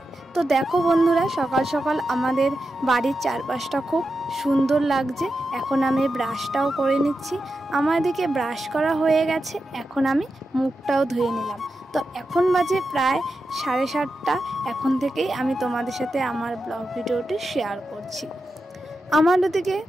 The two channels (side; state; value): both; normal; correlation 0.89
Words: তো দেখো বন্ধুরা, সকাল সকাল আমাদের বাড়ির চারপাশটা খুব সুন্দর লাগছে। এখন আমি ব্রাশটাও করে নিচ্ছি। আমার দিকে ব্রাশ করা হয়ে গেছে, এখন আমি মুখটাও ধুয়ে নিলাম। তো এখন বাজে প্রায় 7:30। এখন থেকেই আমি তোমাদের সাথে আমার ব্লগ ভিডিওটি শেয়ার করছি। আমার ওদিকে